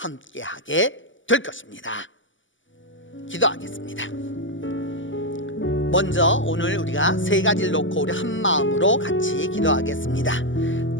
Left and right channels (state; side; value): late; right; 0.55 ms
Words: 될 것입니다. 기도하겠습니다. 먼저 오늘 우리가 세 가지를 놓고 우리 한 마음으로 같이 기도하겠습니다.